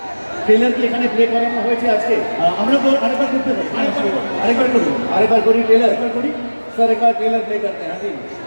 ট্রেলার কি এখানে প্লে করানো হয়েছে আজকে? আমরা তো আরেকবার করতে পারি, আরেকবার করি ট্রেলার করি স্যার, একবার ট্রেলার প্লে করতে हैं जी,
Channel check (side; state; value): both; inverted; correlation -1.00